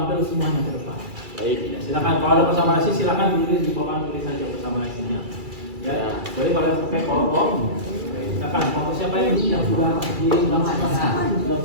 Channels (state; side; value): late; left; 2.3 ms